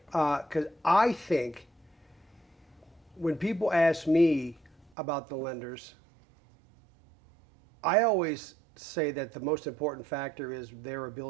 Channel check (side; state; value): left; drops out; at 4.9 s